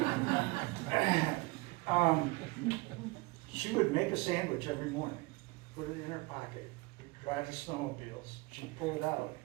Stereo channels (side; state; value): left; quieter; 23.8 dB